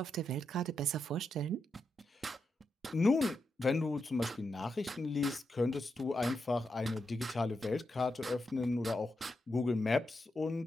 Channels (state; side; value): normal; both; correlation 0.85